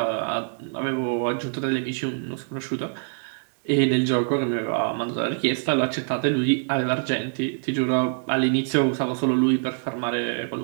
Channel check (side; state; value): left; silent; digital silence